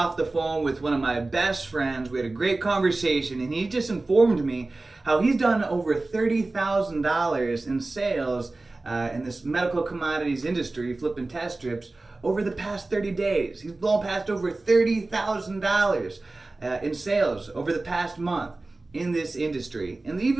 the phone with one of my best friends. We had a great conversation, and he just informed me how he's done over $30,000 in sales in this medical commodities industry, flipping test strips, over the past 30 days. He's blown past over $30,000 in sales over the past month in this industry. And the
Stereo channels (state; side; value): quieter; left; 3.2 dB